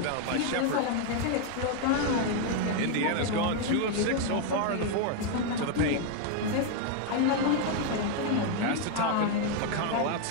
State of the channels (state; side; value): different; both; correlation 0.01